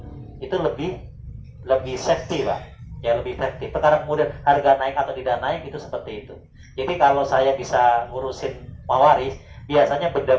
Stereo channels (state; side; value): identical; both; correlation 1.00